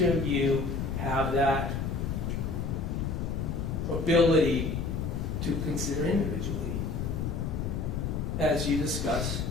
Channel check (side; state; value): left; noise; rumble, 2 dB below the sound